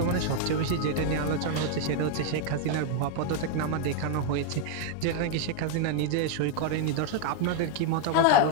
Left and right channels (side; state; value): both; different; correlation 0.00